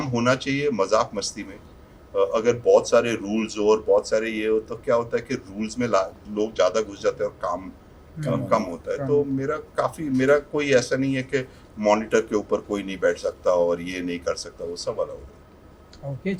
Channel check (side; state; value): both; identical; correlation 1.00